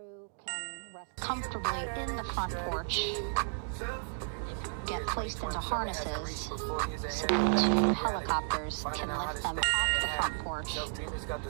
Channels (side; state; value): left; silent; digital silence